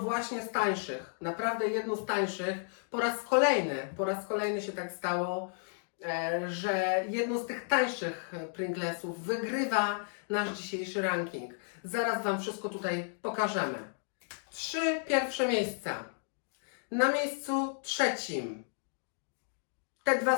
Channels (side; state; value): right; silent; 56 dB below the other